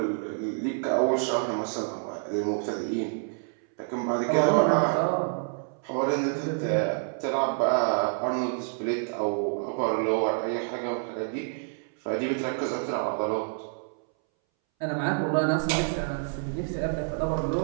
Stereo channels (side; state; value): left; silent; 59 dB below the other